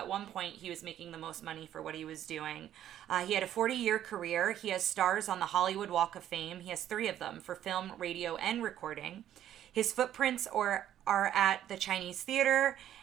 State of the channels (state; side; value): quieter; left; 11.3 dB